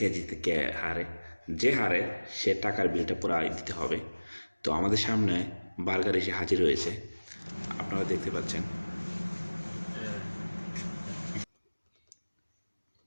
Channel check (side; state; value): both; inverted; correlation -1.00